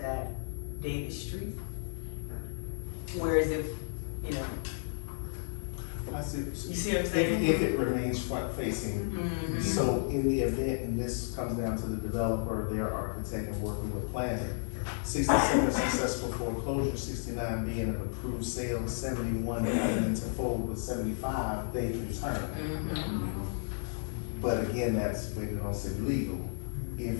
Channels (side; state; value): right; silent; digital silence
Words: that Davis Street. Whereas if, you know, I see. you see what I'm saying? If it remains front facing, so in the event, and this comes down to the developer, their architect, and working with planning, 67 successful foreclosure, 69 being an approved sale, 71 coming into fold with 75, they can turn. But again, that's waiting on city legal.